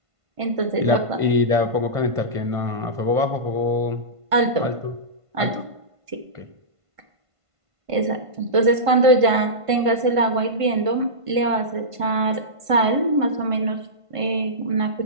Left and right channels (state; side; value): late; left; 1.5 ms